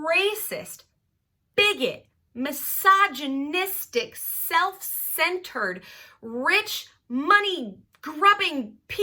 bigot, misogynistic, self-centered, rich, money-grubbing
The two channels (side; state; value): both; identical; correlation 1.00